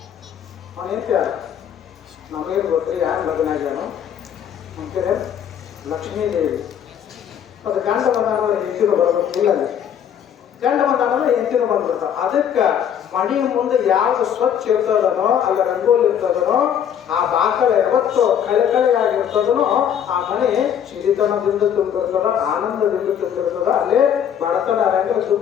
ಅವನ ಹೆಂಡ್ತಿಯಾರ? ನಮಗೇನು ಗೊತ್ತ್ರಿ ಯಾರು ಲಗ್ನ ಆಗ್ಯಾನು ಅಂತೀರ? ಲಕ್ಷ್ಮೀದೇವಿ. ಅದು ಗಂಡ ಬಂದಾನ ಹೆಂಡತಿನೂ ಬರ್ಬೇಕು. ಇಲ್ಲ, ಗಂಡ ಬಂದಾನ ಹೆಂಡತಿನೂ ಬಂದ್ಬಿಡ್ತಾವ. ಅದಕ್ಕೆ ಮಣಿ ಮುಂದೆ ಯಾವ್ದು ಸ್ವಚ್ಛ ಇರ್ತದನೋ ಅಲ್ಲ ರಂಗೋಲಿ ಇರ್ತದನೋ ಆ ಬಾಕಲ ಯಾವತ್ತು ಕಳೆಯಾಗಿರ್ತದನೋ ಆ ಮನೆ ಸಿರಿತನದಿಂದ ತುಂಬಿರ್ತದ, ಆನಂದದಿಂದ ತುಂಬಿರ್ತದ. ಅಲ್ಲೇ ಬಡತನ ಇರಂಗಿಲ್ಲ,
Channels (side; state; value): right; quieter; 9.0 dB